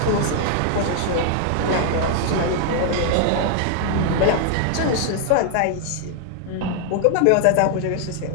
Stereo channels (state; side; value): different; both; correlation 0.00